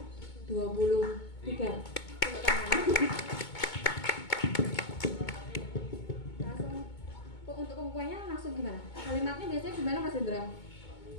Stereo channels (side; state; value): right; late; 2.2 ms